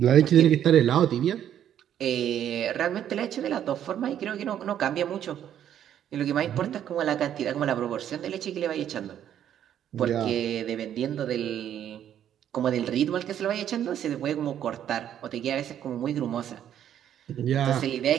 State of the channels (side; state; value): left; quieter; 10.3 dB